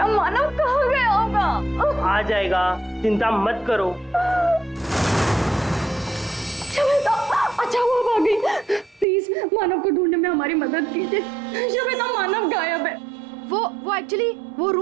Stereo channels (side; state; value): left; drops out; at 9.1 s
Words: मानव कहाँ गया होगा? आ जाएगा, चिंता मत करो। शमिता, अच्छा वो भाग गई। प्लीज मानव को ढूंढने में हमारी मदद कीजिए। शमिता, मानव गायब है। वो एक्चुअली वो